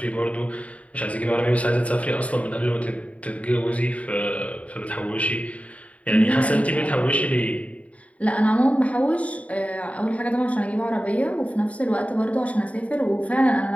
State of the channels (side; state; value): right; late; 0.067 ms